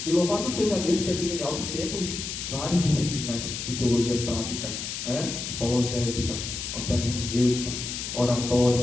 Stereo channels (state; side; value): noise; left; hiss, 5 dB below the sound